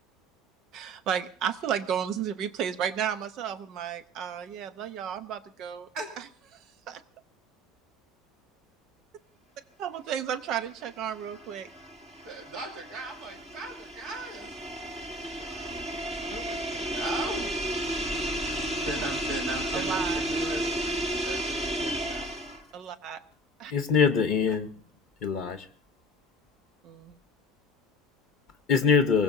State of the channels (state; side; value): normal; both; correlation 0.41